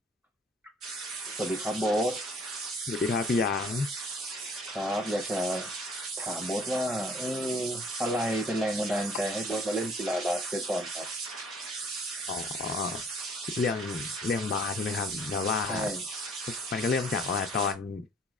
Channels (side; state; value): both; normal; correlation 0.57